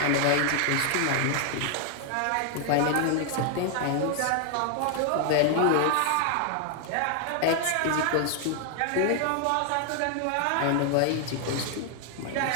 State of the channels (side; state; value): both; different; correlation 0.00